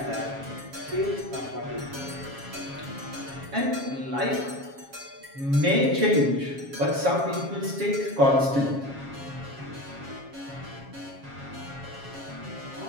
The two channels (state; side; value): late; left; 7.3 ms